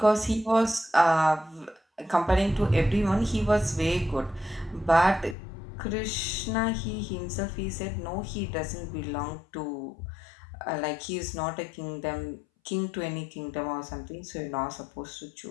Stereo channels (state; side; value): drops out; right; at 5.4 s